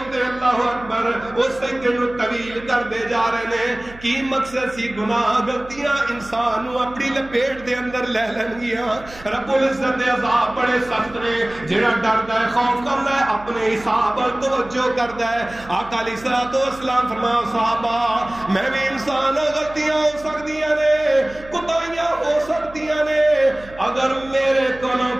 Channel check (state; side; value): noise; right; hum, 19 dB below the sound